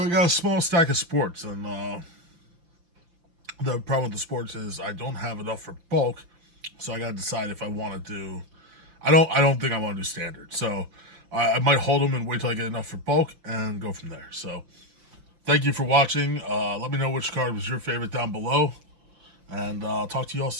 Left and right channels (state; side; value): late; left; 5.8 ms